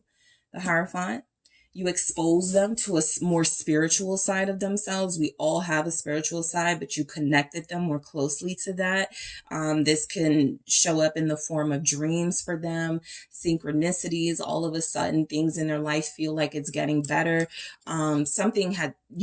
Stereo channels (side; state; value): both; identical; correlation 1.00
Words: The Hierophant. You expose them to a more spiritual side of themselves. We all have a spiritual side, but you connected them more closely to that. This can show up in the form of dreams for them, synchronicities. All of a sudden, things in their life feel like it's getting better. Something had